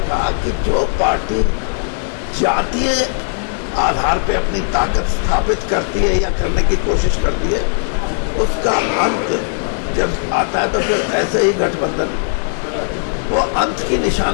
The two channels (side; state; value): right; silent; digital silence